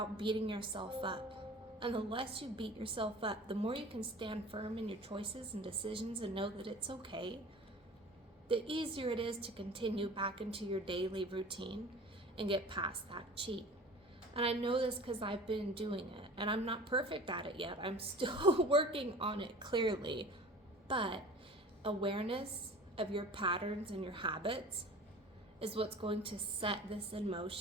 beating yourself up And the less you beat yourself up, the more you can stand firm in your choices and decisions and know that it's okay, the easier it is to continue back into your daily routine and get past that cheat. And I know this because I've been doing it, and I'm not perfect at it yet. I'm still working on it, clearly. But awareness of your patterns and your habits is what's going to set this in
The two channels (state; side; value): normal; both; correlation 0.41